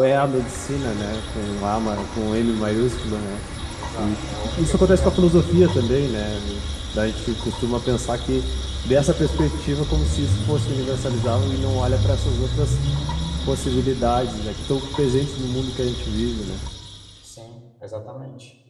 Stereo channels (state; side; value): identical; both; correlation 1.00